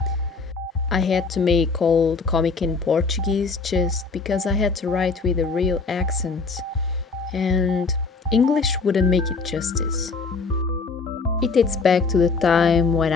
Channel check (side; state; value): right; quieter; 4.5 dB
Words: I had to make all the comic in Portuguese just because I had to write with a real accent and English wouldn't make it justice. It dates back to the time when